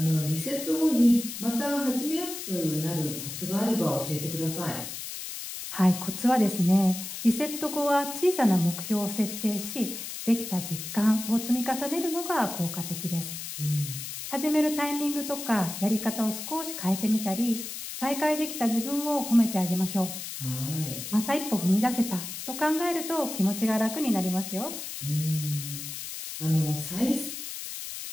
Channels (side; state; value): left; noise; hiss, 8 dB below the sound